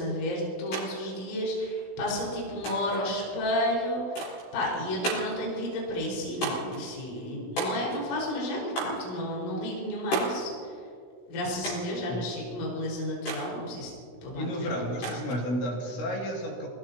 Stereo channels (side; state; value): right; late; 16 ms